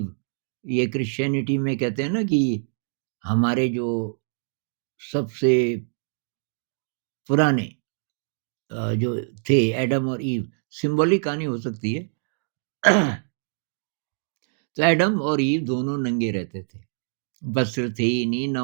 ये क्रिश्चियनिटी में कहते हैं ना कि हमारे जो सबसे पुराने जो थे एडम और ईव, सिंबॉलिक कहानी हो सकती है। तो एडम और ईव दोनों नंगे रहते थे। वस्त्र थे ही नहीं, ना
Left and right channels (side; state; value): left; silent; digital silence